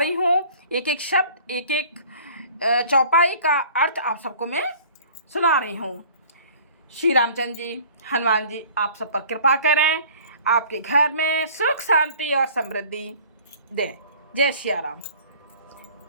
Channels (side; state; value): both; inverted; correlation -0.49